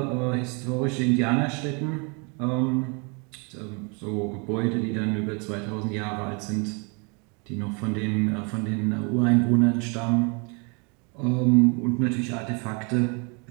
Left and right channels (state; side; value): quieter; left; 33.2 dB